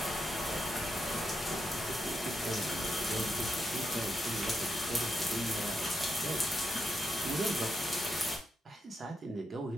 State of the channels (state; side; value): normal; both; correlation 0.83